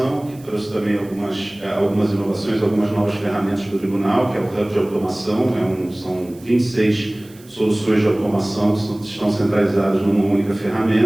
que trouxe também algumas inovações, algumas novas ferramentas para o tribunal, que é o Hub de Automação, são 26 soluções de automação que estão centralizadas numa única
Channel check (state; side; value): noise; right; hiss, 25 dB below the sound